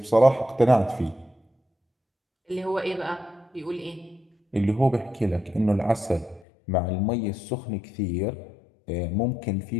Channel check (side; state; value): right; drops out; at 6.5 s